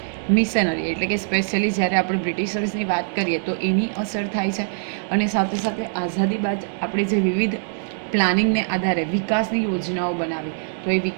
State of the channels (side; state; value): left; silent; digital silence